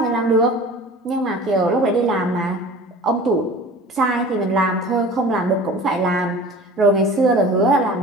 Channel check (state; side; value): normal; both; correlation 0.41